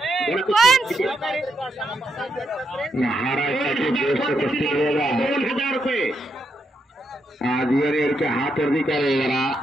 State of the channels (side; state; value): both; normal; correlation 0.80